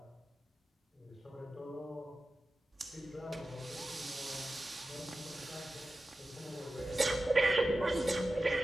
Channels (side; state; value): both; normal; correlation 0.94